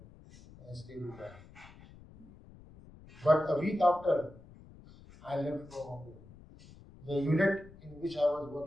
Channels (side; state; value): left; noise; rumble, 21 dB below the sound